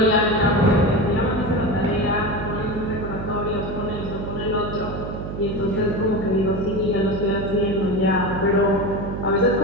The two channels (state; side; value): noise; right; hum, 7 dB below the sound